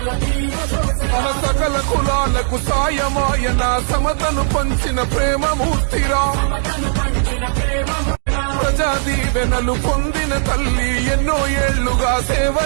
మన సకల కులాలకు సాయమాయన సమతను పంచిన ప్రేమమూర్తిరా. ప్రజా దీవెనలు పొందిన తల్లి ఎన్నో ఏళ్లుగా సేవ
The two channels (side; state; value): left; silent; digital silence